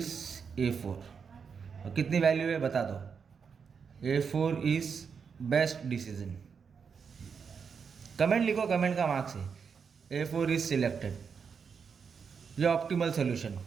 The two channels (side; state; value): left; quieter; 6.2 dB